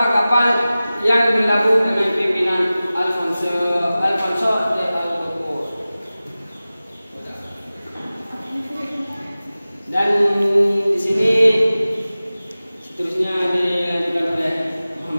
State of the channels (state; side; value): inverted; both; correlation -0.97